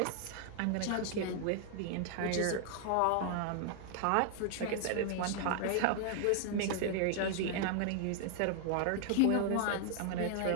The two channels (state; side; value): different; both; correlation 0.00